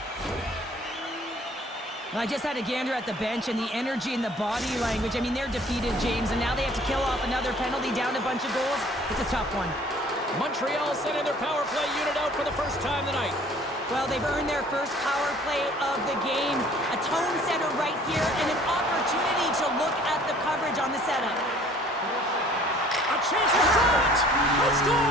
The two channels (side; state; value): both; normal; correlation 0.54